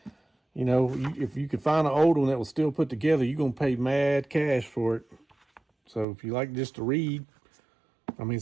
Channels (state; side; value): drops out; left; at 6.1 s